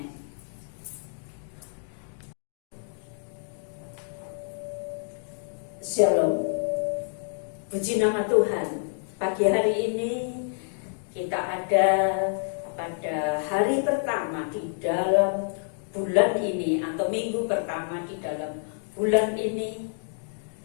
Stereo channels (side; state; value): right; silent; digital silence